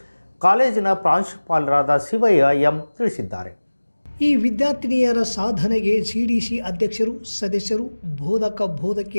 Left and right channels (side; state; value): both; inverted; correlation -1.00